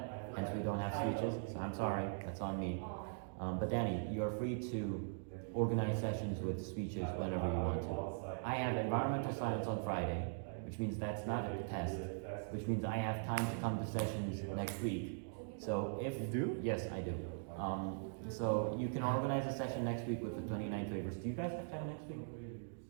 Hence, we don't have speeches. So I'm sorry. That's on me. But Danny, you are free to organize sessions with speeches whenever you want to. I have environmental science on Friday, which means that's not a test, which means I have time to come to sessions next week. So if You do? Yes, I do. So you can organize a session next week with the 29 waivers. Do you guys have time next week?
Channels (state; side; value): silent; left; digital silence